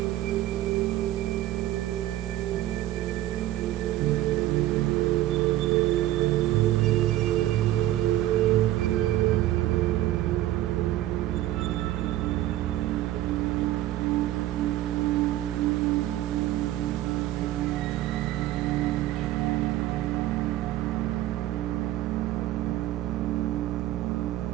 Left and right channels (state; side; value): quieter; left; 14.5 dB